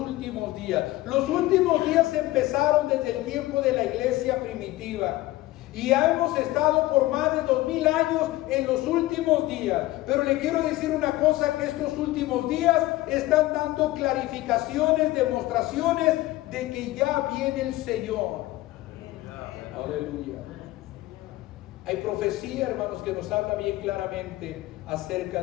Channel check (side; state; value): right; quieter; 17.4 dB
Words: días. Los últimos días empezaron desde el tiempo de la iglesia primitiva. Y ya hemos estado por más de 2000 años en los últimos días. Pero le quiero decir una cosa, que estos últimos días están dando clarificaciones, demostraciones de que ya viene el Señor. Aleluya. Hay profecía, hermanos, que nos habla bien claramente acerca